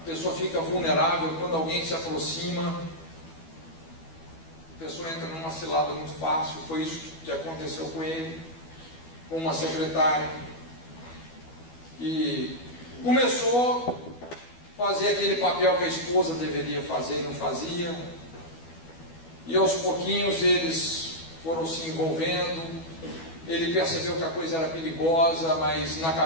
pessoa fica vulnerável quando alguém se aproxima. A pessoa entra numa cilada muito fácil. Foi isso que aconteceu com ele, com uma secretária, e começou a fazer aquele papel que a esposa deveria fazer e não fazia, e aos pouquinhos eles foram se envolvendo. Ele percebeu que a coisa era perigosa, mas na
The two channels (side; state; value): right; late; 12 ms